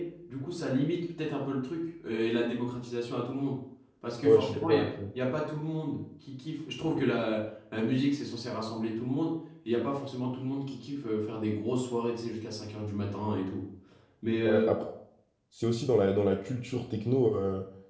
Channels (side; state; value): both; identical; correlation 1.00